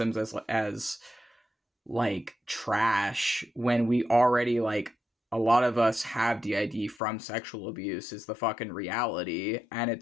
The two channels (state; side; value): drops out; right; at 7.0 s